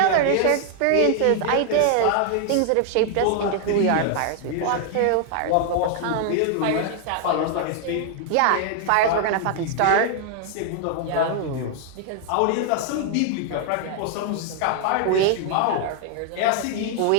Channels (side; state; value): both; different; correlation 0.00